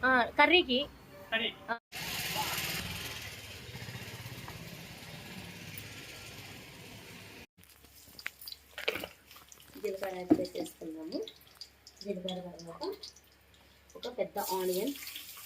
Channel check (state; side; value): identical; both; correlation 1.00